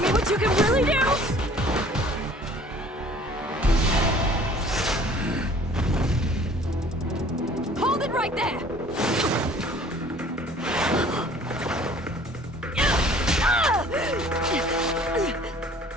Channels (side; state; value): both; normal; correlation 0.52